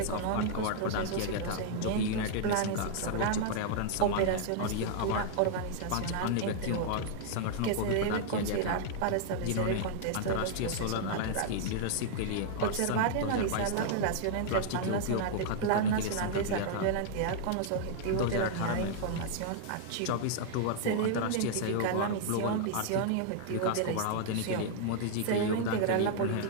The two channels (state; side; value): different; both; correlation -0.01